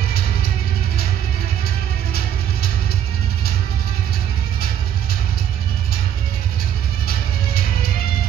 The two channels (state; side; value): quieter; left; 9.8 dB